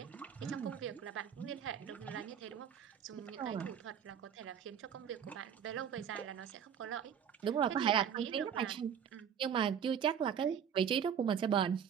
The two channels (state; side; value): quieter; left; 8.3 dB